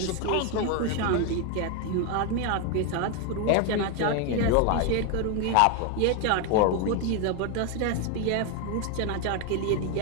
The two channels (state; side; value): different; both; correlation 0.01